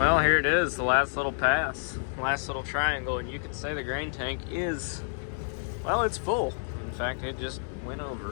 here it is, the last little pass, last little triangle, and you could say the grain tank is, well, it's full. In fact, it just went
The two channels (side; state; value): right; silent; digital silence